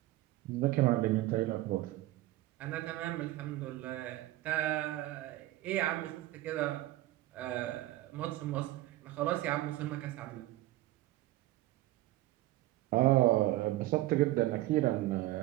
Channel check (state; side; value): quieter; left; 16.5 dB